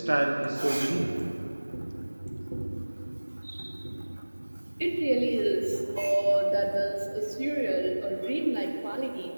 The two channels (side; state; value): both; inverted; correlation -1.00